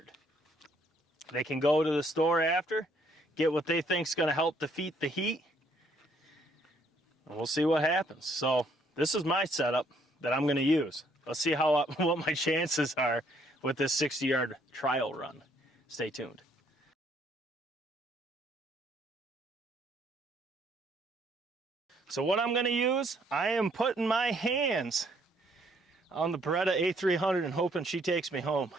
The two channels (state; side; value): normal; both; correlation 0.66